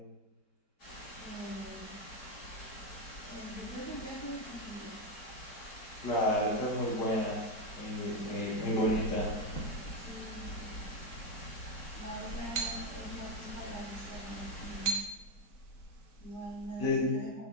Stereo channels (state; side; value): late; right; 4.5 ms